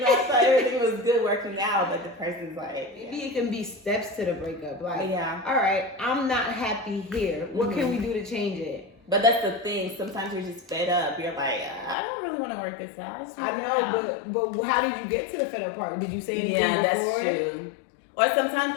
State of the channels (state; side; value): drops out; right; at 12.0 s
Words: I thought everything was good working out, but the person's like, maybe it can be steps to the breakup. Like, yeah. All right, I'm not happy here. What can we do to change it? But that's the thing. Sometimes you're just fed up. You're like, I don't really want to work this out. I know, but how did you get to the fed up part? Did you say anything before? Yeah, that's true. Or